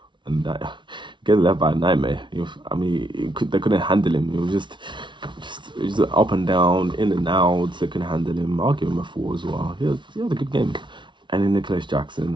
and gave the left back a nightmare. They couldn't handle him. It was just up and down, in and out. They couldn't handle him. I'll give him a 4 as well. He had a good game. And then Nicholas Jackson,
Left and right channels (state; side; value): late; left; 0.24 ms